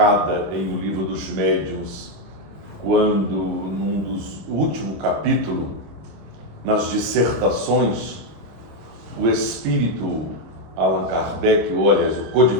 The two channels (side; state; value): left; late; 25 ms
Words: em O Livro dos Médiuns, quando, num dos últimos capítulos, nas dissertações, o espírito Allan Kardec, ou aliás, o